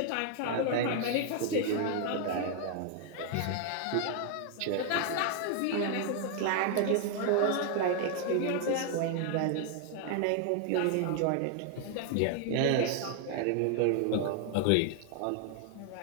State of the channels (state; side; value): different; both; correlation 0.00